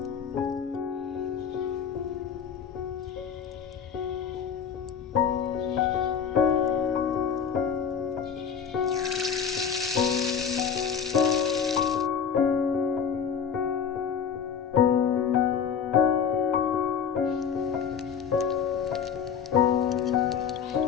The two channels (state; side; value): quieter; right; 7.4 dB